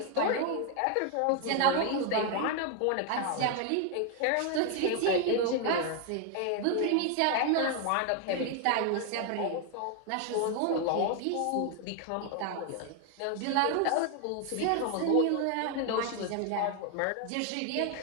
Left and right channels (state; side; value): different; both; correlation 0.00